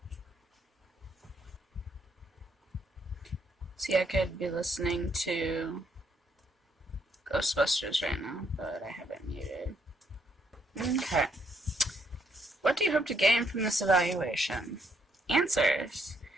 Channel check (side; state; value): both; normal; correlation 0.73